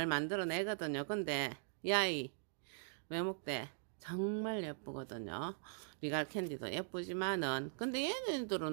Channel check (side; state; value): left; silent; digital silence